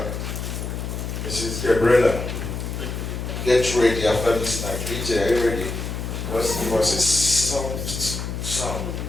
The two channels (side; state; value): left; noise; hum, 5 dB below the sound